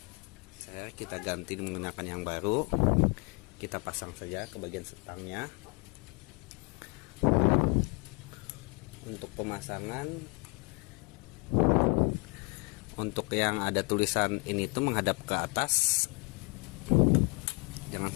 Kita ganti menggunakan yang baru. Kita pasang saja ke bagian setangnya. Untuk pemasangan, untuk yang ada tulisan ini tuh menghadap ke atas,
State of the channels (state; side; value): quieter; right; 30.5 dB